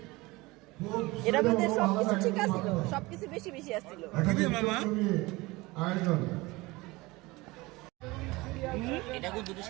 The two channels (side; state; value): left; quieter; 22.1 dB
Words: এটার মধ্যে সবকিছু ঠিক আছিল, সবকিছু বেশি বেশি আসছিল। আয়োজন এটা কিন্তু দুটো